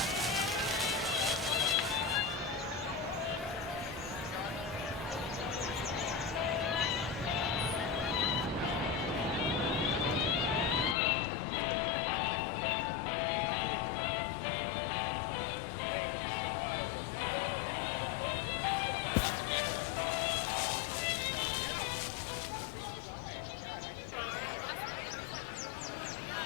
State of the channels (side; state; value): right; drops out; at 11.0 s